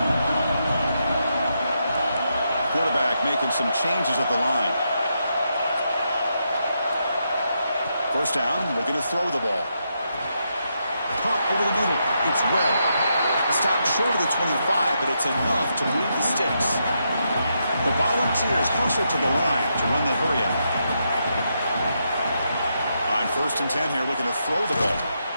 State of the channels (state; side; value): inverted; both; correlation -0.82